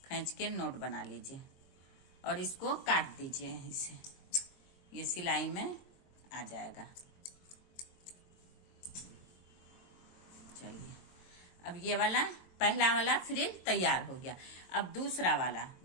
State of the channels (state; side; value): late; right; 22 ms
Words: खींच के नोट बना लीजिए और इसको काट दीजिए इसे, ये सिलाई में आ जाएगा। चलिए अब ये वाला पहला वाला फ्रिल तैयार हो गया। अब दूसरा वाला